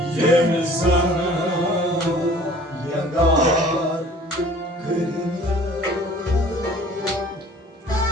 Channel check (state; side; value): normal; both; correlation 0.50